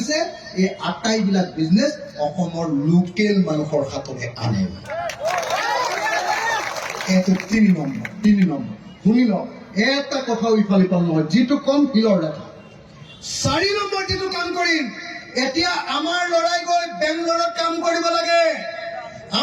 এই আটাইবিলাক বিজনেছ অসমৰ লোকেল মানুহৰ হাতলৈ আনে। এইটো 3 নম্বৰ। শুনি লওক, এটা কথাও ইফাল সিফাল নহয়, যিটো কম শিলৰ দেখা। 4 নম্বৰ যিটো কাম কৰিম, এতিয়া আমাৰ ল'ৰাই গৈ বেংগলোৰত কাম কৰিব লাগে,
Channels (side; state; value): both; identical; correlation 1.00